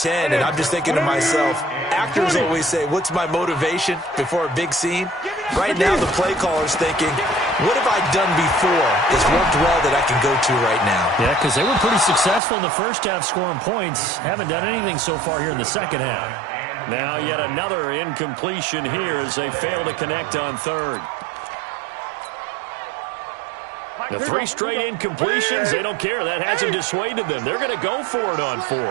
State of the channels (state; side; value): drops out; left; at 12.4 s